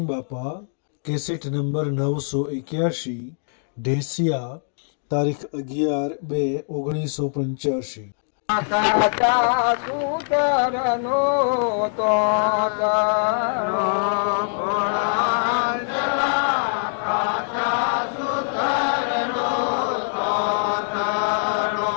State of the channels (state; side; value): silent; right; digital silence